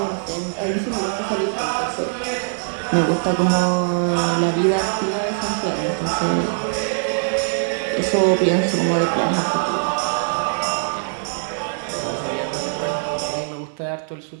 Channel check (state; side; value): silent; left; 64 dB below the other